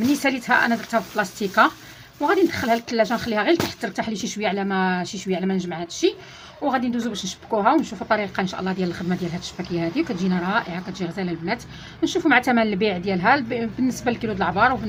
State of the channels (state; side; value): identical; both; correlation 1.00